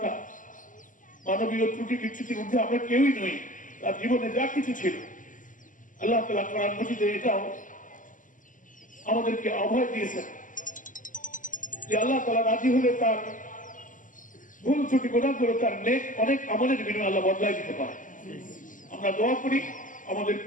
মানবীয় ত্রুটি বিচ্যুতির মধ্যে আমরা কেউই নই। তার জীবনে যা কিছু ছিল আল্লাহ তাআলা কোরআন মাজিদে এটাও আমাদেরকে অভয় দিয়েছেন যে আল্লাহ তাআলা রাজি হলে তার ভুল ত্রুটি গুনাহগুলো তার নেক অনেক আমলের বিনিময়ে আল্লাহ বদলাই দিতে পারে। আমরা দোয়া করি আমাদের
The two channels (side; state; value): right; late; 0.38 ms